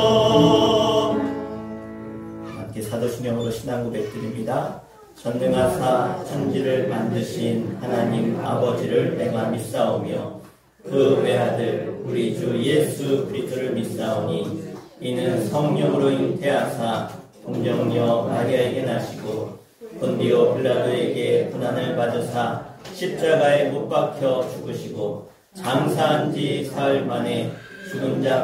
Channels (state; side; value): identical; both; correlation 1.00